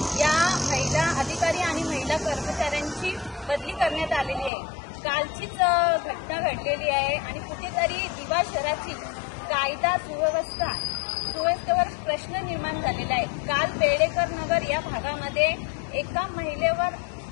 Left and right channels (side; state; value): right; drops out; at 4.5 s